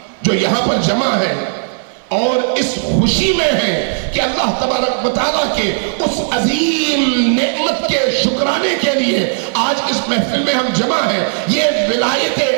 جو یہاں پر جمع ہیں اور اس خوشی میں ہیں کہ اللہ تبارک و تعالیٰ کے اس عظیم نعمت کے شکرانے کے لیے آج اس محفل میں ہم جمع ہیں. یہ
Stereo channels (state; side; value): silent; left; digital silence